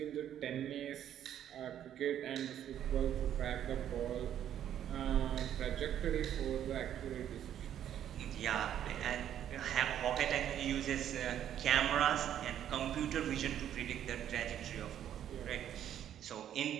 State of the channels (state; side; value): quieter; left; 10.5 dB